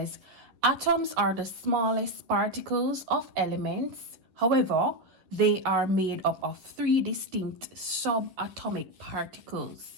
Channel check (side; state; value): left; late; 11 ms